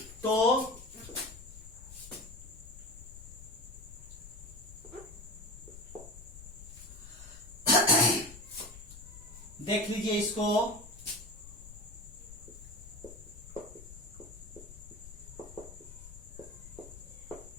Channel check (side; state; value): left; noise; rumble, 15 dB below the sound